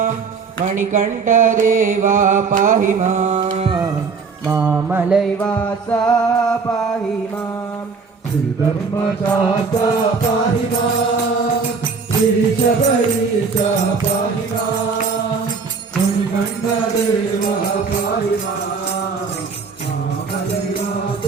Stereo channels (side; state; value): left; quieter; 5.1 dB